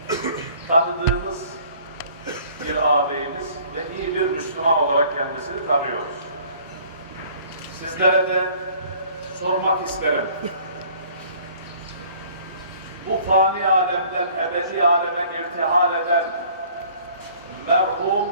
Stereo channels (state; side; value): inverted; both; correlation -0.54